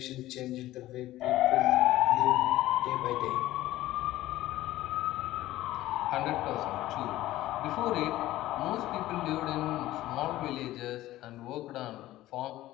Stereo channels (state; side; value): quieter; right; 15.6 dB